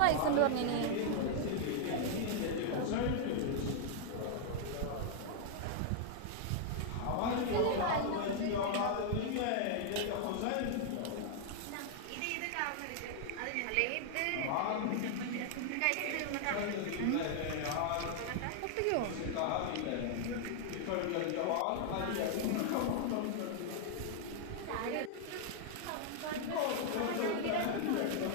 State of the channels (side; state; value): both; different; correlation -0.01